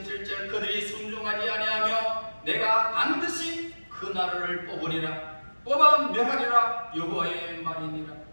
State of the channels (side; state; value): both; inverted; correlation -1.00